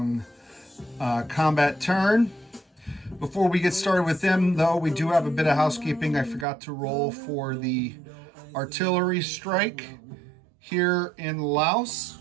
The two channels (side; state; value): left; drops out; at 6.5 s